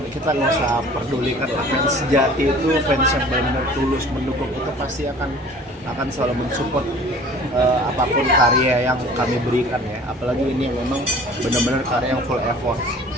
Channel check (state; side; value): normal; both; correlation 0.47